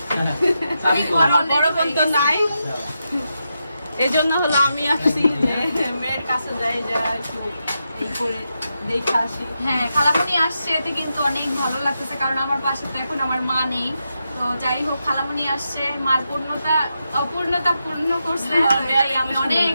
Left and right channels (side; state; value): both; inverted; correlation -0.86